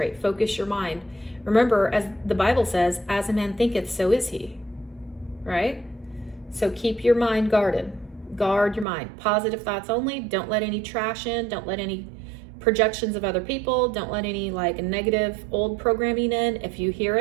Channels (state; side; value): drops out; left; at 8.8 s